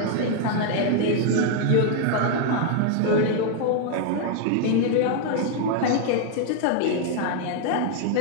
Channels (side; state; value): both; different; correlation 0.00